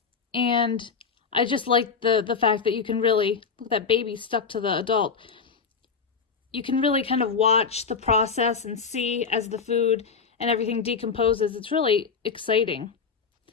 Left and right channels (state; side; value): quieter; right; 5.6 dB